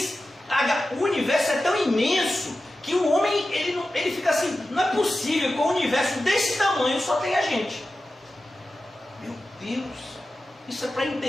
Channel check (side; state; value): both; normal; correlation 0.93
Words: o universo é tão imenso, que o homem ele fica assim, não é possível que um universo desse tamanho só tenha gente. Meu Deus, isso é para